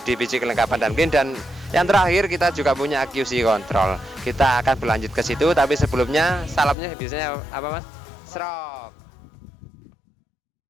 divisi kelengkapan dan clean. Dan yang terakhir kita juga punya QC control. Kita akan berlanjut ke situ, tapi sebelumnya salamnya biasanya apa Mas? Serok.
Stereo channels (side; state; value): right; drops out; at 6.8 s